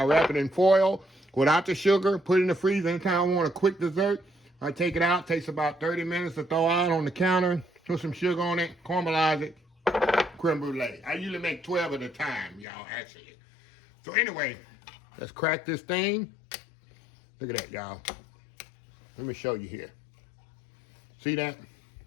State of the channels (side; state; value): right; drops out; at 12.7 s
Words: wrap it in foil without the sugar, put it in the freezer. Anytime I want a quick dessert, I take it out. Takes about 30 minutes to throw out on the counter. Put some sugar on it, caramelize it, creme brulee. I usually make 12 at a time, y'all, actually. So anyway, let's crack this thing. Look at that, y'all. Let me show you here. See that?